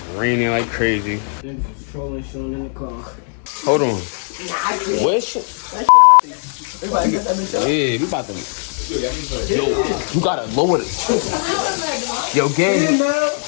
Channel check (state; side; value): silent; right; digital silence